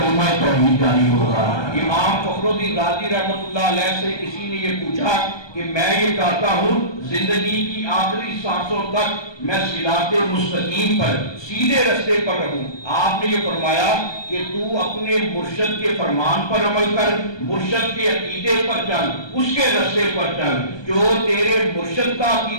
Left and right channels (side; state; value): right; late; 1.2 ms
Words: توحید جاری ہوگا۔ امام فخر الدین رازی رحمۃ اللہ علیہ سے کسی نے یہ پوچھا کہ میں یہ چاہتا ہوں زندگی کی آخری سانسوں تک میں صراط مستقیم پر، سیدھے رستے پر رہوں۔ آپ نے یہ فرمایا کہ تو اپنے مرشد کے فرمان پر عمل کر، مرشد کے عقیدے پر چل، اس کے رستے پر چل، جو تیرے مرشد کا